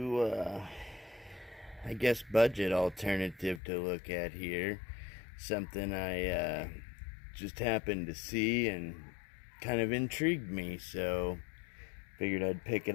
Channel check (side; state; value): right; drops out; at 3.6 s